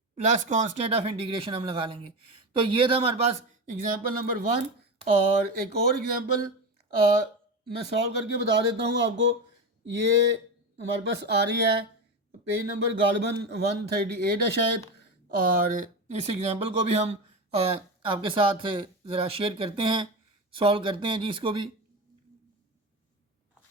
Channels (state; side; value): normal; both; correlation 0.20